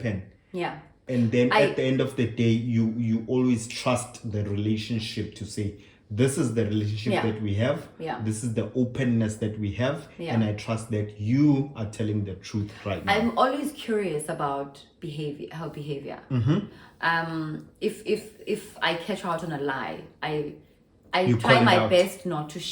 Yeah. And then at the end of the day, you always trust the relationship to say, this is the relationship that we have. Yeah. This is the openness that we have. Yeah. And I trust that you are telling the truth right now. I'm always curious about her behavior. If I catch her out on a lie, I try my best not to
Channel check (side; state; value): both; identical; correlation 1.00